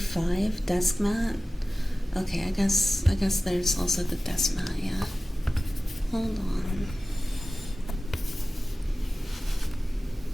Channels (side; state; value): both; normal; correlation 0.96